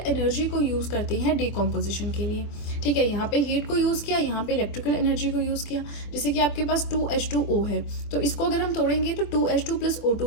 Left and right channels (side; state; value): right; late; 24 ms